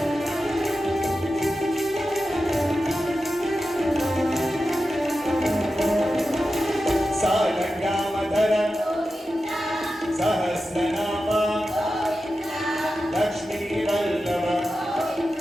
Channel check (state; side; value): normal; both; correlation 0.92